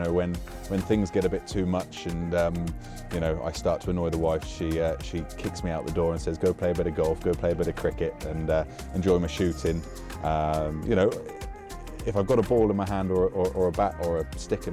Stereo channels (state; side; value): identical; both; correlation 1.00